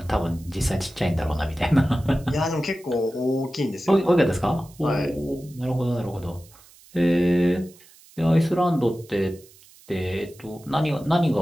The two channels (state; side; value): noise; right; hiss, 25 dB below the sound